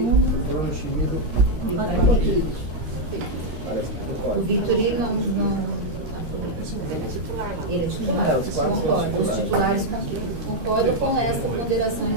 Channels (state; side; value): late; left; 13 ms